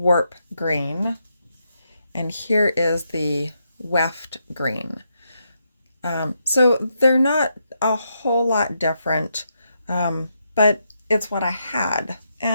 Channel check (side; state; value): both; inverted; correlation -0.81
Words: green, and here is the weft green. So they're not a whole lot different, but it's what I had,